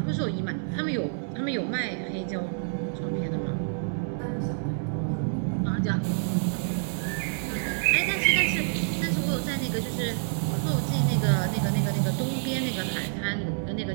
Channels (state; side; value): silent; left; 60 dB below the other